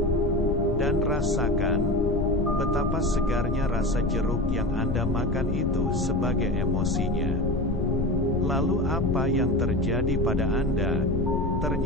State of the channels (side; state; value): left; noise; rumble, 2 dB below the sound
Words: Dan rasakan betapa segarnya rasa jeruk yang Anda makan itu sebagai emosinya. Lalu apa yang terjadi pada Anda?